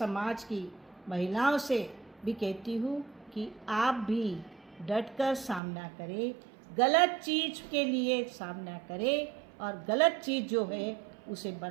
की महिलाओं से भी कहती हूँ कि आप भी डट कर सामना करें, गलत चीज़ के लिए सामना करें और गलत चीज़ जो है उसे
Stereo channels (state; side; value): drops out; left; at 5.6 s